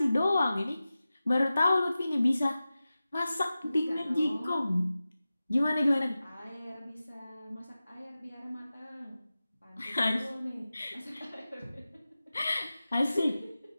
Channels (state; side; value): inverted; both; correlation -0.95